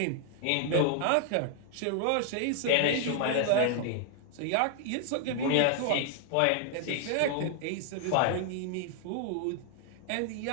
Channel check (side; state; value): both; different; correlation 0.00